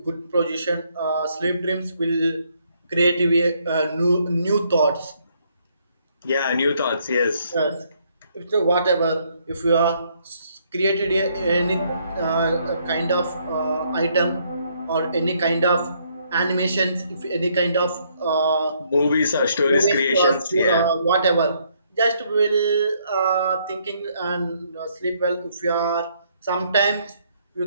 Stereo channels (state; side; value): inverted; both; correlation -0.70